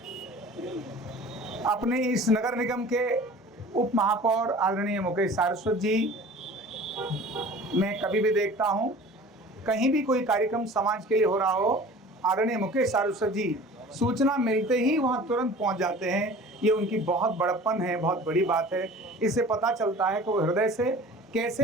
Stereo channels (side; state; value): both; normal; correlation 0.43